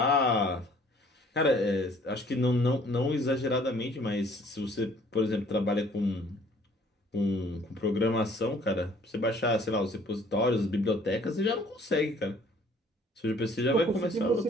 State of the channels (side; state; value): both; normal; correlation 0.57